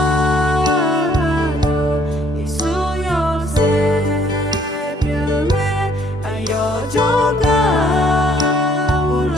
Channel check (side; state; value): both; normal; correlation 0.63